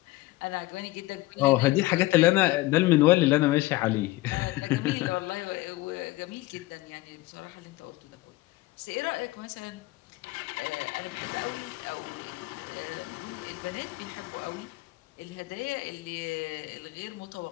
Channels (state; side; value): quieter; right; 19.3 dB